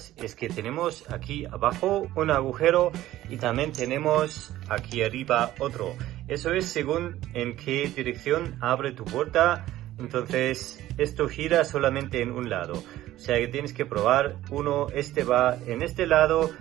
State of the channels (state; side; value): quieter; left; 14.6 dB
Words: es que tenemos aquí abajo un agujero y también tenemos aquí arriba otro. Eso es según en qué dirección abre tu puerta. Entonces esto gira solamente en un lado, o sea que tienes que probar uno. Este va en este lado